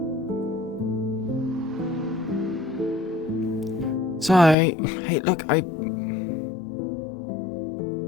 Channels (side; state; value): right; drops out; at 4.5 s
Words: Sorry. Hey, look, I